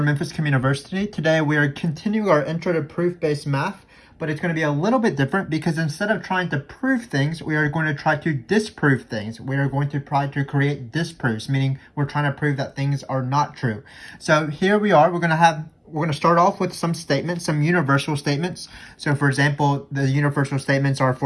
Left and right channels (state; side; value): identical; both; correlation 1.00